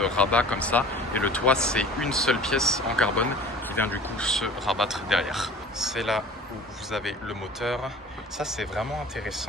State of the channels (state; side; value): normal; both; correlation 0.44